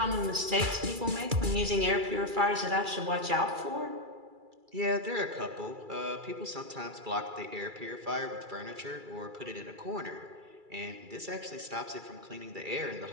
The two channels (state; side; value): late; left; 2.3 ms